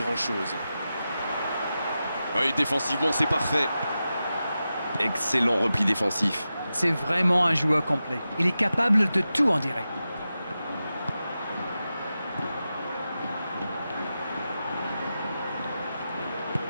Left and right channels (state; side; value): inverted; both; correlation -0.92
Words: Oui, défensivement, c'est parfait. Excellent repli défensif. C'est vraiment un joueur complet. Il est capable de tout, on dirait.